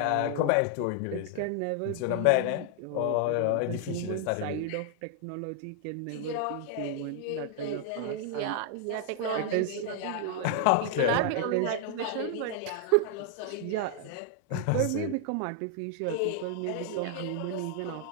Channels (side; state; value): both; different; correlation 0.00